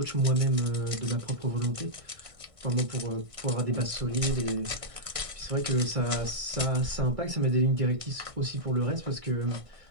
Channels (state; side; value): late; left; 1.6 ms